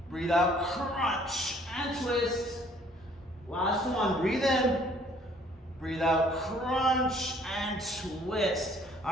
Breathe out, crunch. And twist. Last one, breathe in. Breathe out, crunch. And twist.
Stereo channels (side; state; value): both; normal; correlation 0.59